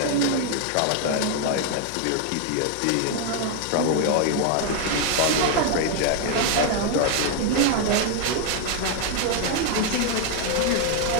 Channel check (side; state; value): both; different; correlation 0.00